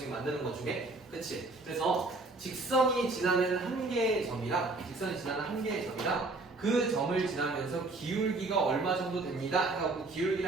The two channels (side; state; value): left; quieter; 3.2 dB